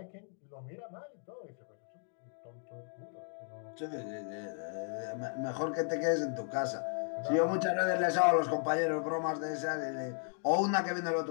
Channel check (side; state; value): right; silent; 54 dB below the other